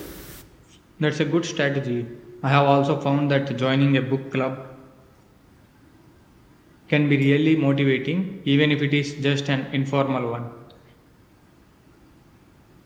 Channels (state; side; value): identical; both; correlation 1.00